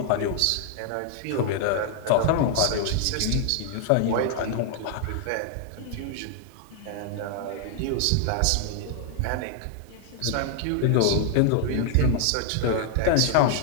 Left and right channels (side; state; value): both; different; correlation 0.00